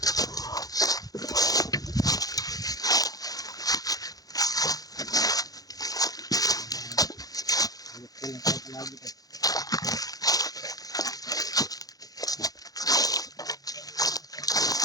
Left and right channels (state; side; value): late; right; 0.18 ms